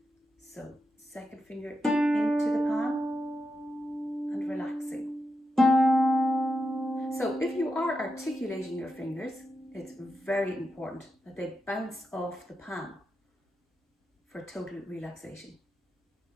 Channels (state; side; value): normal; both; correlation 0.87